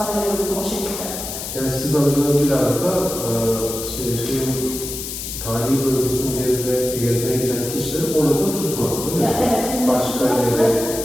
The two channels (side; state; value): left; noise; hiss, 7 dB below the sound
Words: görüyor o şekilde. Yani sizin amacınız biraz da tarihi bölgesini gezmeye giden kişileri orada tutmak, öyle mi? Evet. Başka yere,